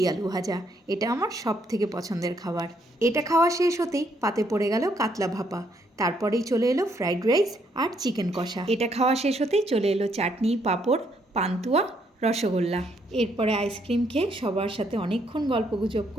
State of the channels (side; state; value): both; normal; correlation 0.72